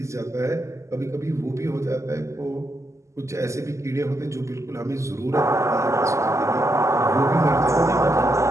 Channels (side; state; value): left; late; 0.14 ms